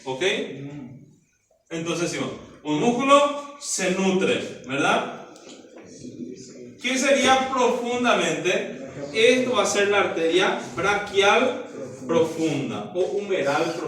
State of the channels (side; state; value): both; identical; correlation 1.00